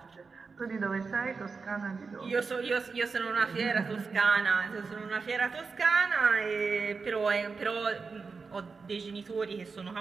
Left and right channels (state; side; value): quieter; left; 4.8 dB